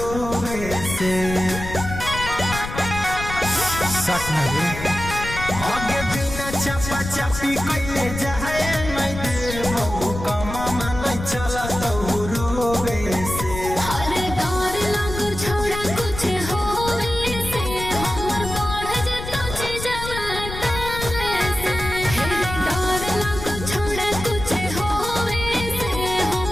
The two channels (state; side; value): noise; left; rumble, 8 dB below the sound